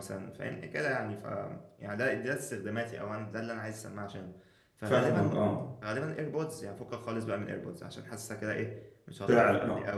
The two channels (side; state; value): both; identical; correlation 1.00